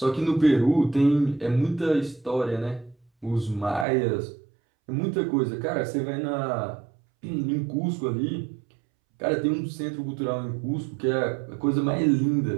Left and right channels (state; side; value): drops out; left; at 3.9 s